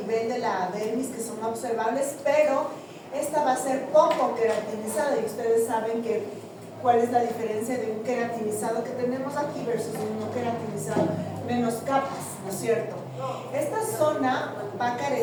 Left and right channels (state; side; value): identical; both; correlation 1.00